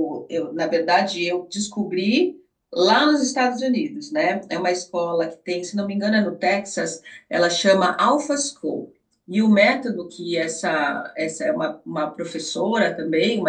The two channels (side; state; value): both; identical; correlation 1.00